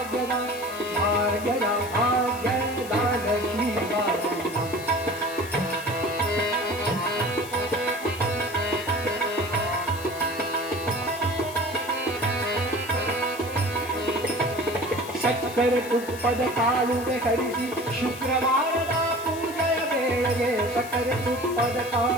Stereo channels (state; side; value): noise; left; hiss, 15 dB below the sound